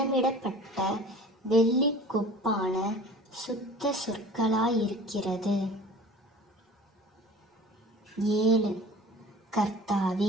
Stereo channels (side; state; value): both; normal; correlation 0.42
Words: வெள்ளிக் கொப்பான சுத்த சொற்களாயிருக்கிறது. 7.